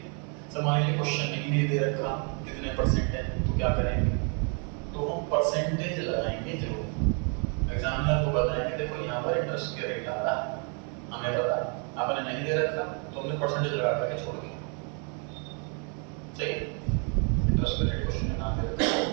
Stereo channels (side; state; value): left; quieter; 38.2 dB